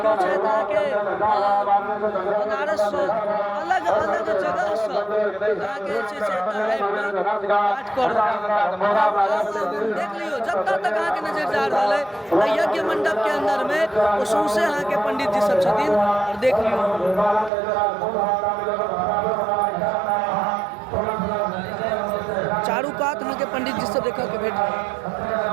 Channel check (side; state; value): left; drops out; at 17.5 s